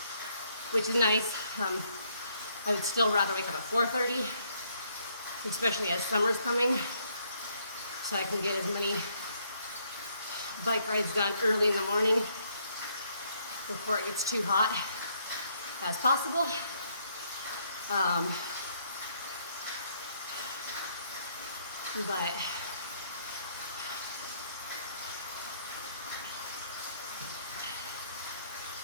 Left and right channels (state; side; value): inverted; both; correlation -0.70